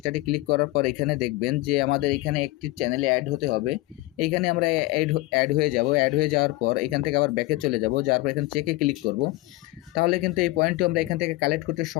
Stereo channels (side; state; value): right; quieter; 19.8 dB